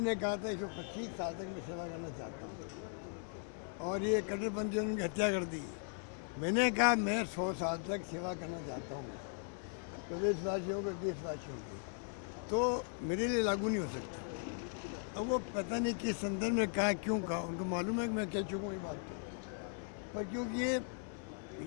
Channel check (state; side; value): silent; right; 52 dB below the other